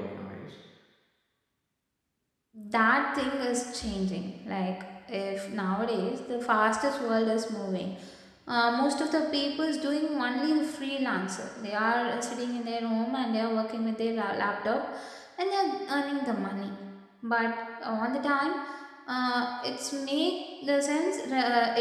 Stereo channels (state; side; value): identical; both; correlation 1.00